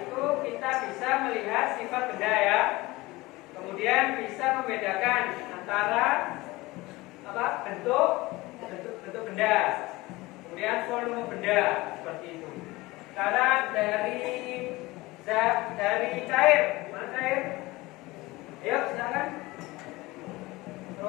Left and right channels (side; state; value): right; quieter; 20.8 dB